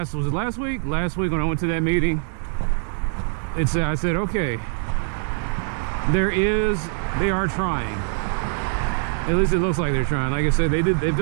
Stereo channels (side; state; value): left; silent; 63 dB below the other